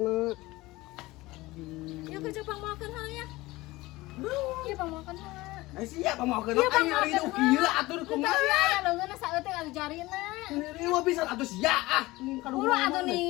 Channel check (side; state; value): right; quieter; 19.8 dB